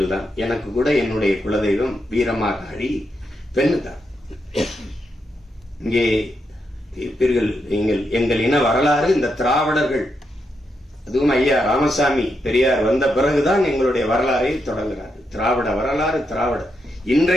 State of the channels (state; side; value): normal; both; correlation 0.83